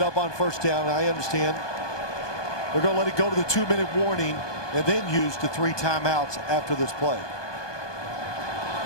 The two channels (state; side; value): late; right; 1.2 ms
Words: up on first down, I understand. They're going to let it go to the 2-minute warning and then use the 3 timeouts after this play.